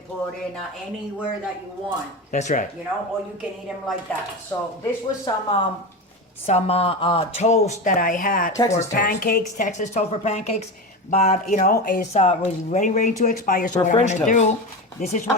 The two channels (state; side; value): normal; both; correlation 0.22